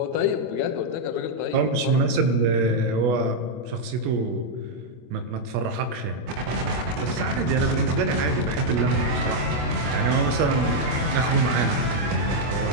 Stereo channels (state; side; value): late; left; 25 ms